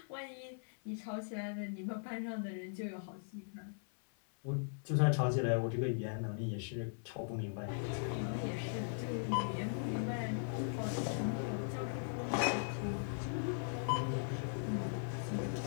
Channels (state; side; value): silent; right; 52 dB below the other